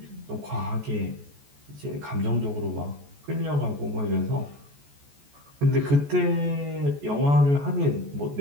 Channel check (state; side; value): late; left; 14 ms